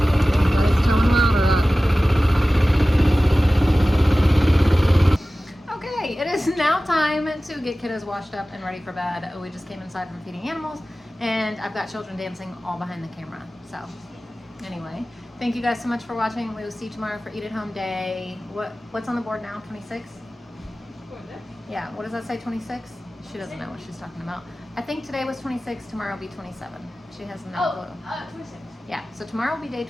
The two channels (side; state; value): both; normal; correlation 0.96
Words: Okay, it is now time to get kiddos washed up and ready for bed. We just came inside from feeding animals, and I've got children dancing all behind the camera. So anyway, thank you guys so much for watching. We will see you tomorrow for Eat at Home Day. What's on the board now? 26? Yeah, what does that say, 26? She doesn't know what she's talking about. I think today was 26, tomorrow will be 27. She has no clue. 26. Yeah, so tomorrow will be day